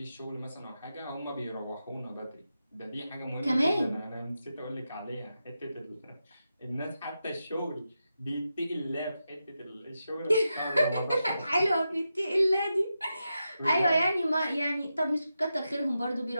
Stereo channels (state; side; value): inverted; both; correlation -0.88